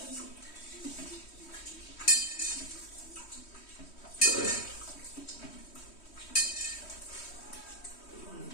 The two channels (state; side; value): late; right; 3.1 ms